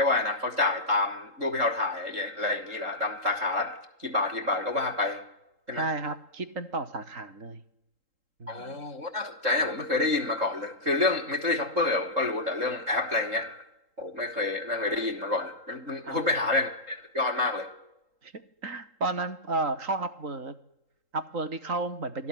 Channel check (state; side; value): late; left; 3.8 ms